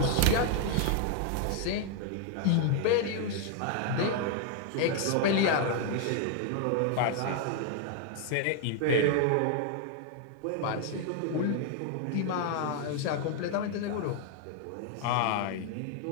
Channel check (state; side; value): different; both; correlation 0.00